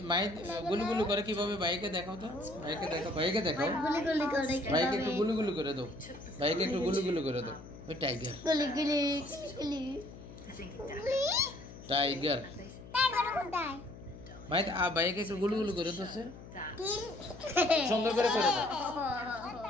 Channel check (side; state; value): left; noise; hum, 16 dB below the sound